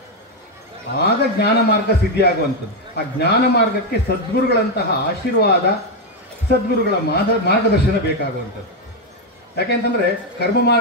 ಆಗ ಜ್ಞಾನ ಮಾರ್ಗ ಸಿದ್ಧಿಯಾಗುವಂಥದ್ದು. ಆ ಜ್ಞಾನ ಮಾರ್ಗಕ್ಕೆ ಸದ್ಗುರುಗಳಂತಹ ಆಶೀರ್ವಾದ, ಸದ್ಗುರುಗಳ ಮಾರ್ಗದರ್ಶನ ಬೇಕಾಗುವಂಥದ್ದು. ಯಾಕೆಂತಂದರೆ ಕರ್ಮ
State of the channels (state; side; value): normal; both; correlation 0.04